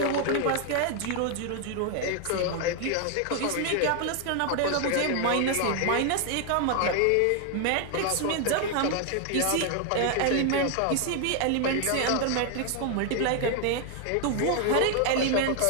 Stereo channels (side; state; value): both; different; correlation 0.00